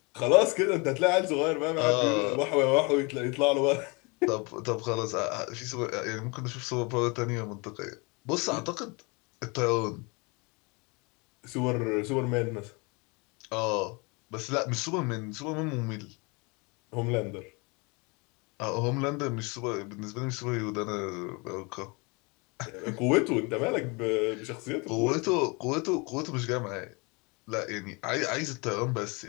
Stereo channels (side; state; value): right; quieter; 29.3 dB